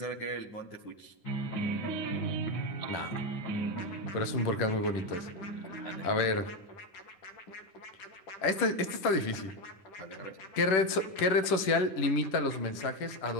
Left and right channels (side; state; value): right; late; 10 ms